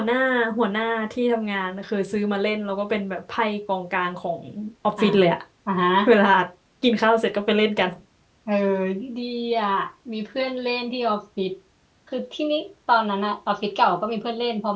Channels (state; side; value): identical; both; correlation 1.00